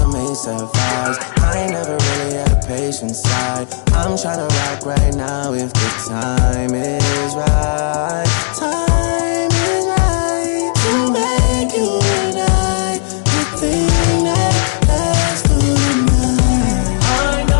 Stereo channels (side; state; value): right; silent; digital silence